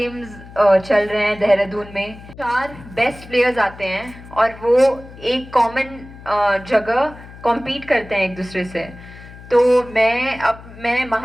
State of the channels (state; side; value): noise; left; hum, 18 dB below the sound